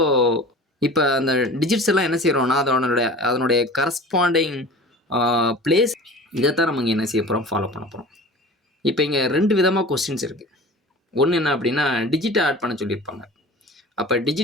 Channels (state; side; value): normal; both; correlation 0.39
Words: இப்போ அந்த டிஜிட்ஸ் எல்லாம் என்ன செய்கிறோம்னா அதனுடைய கரஸ்பாண்டிங் பிளேஸ் இதைத்தான் நம்ம இங்கே என்ன செய்ய போகிறோம், ஃபாலோ பண்ண போகிறோம். இப்போ இங்கே 2 விதமாக கொஸ்டின்ஸ் இருக்குது. ஒன்று என்ன அப்படின்னா டிஜிட்டை ஆட் பண்ண சொல்லியிருப்பாங்க. அப்போ